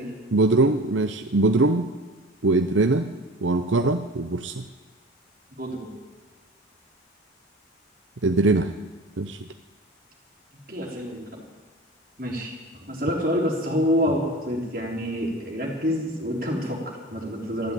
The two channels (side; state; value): both; normal; correlation 0.37